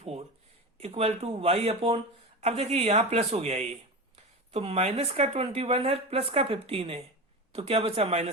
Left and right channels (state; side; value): normal; both; correlation 0.25